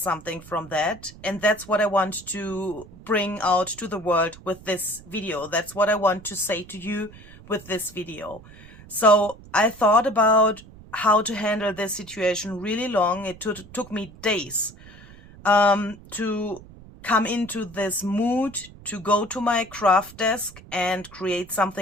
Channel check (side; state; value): right; noise; rumble, 20 dB below the sound